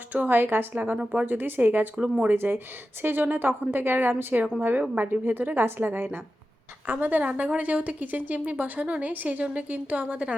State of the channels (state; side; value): normal; both; correlation 0.92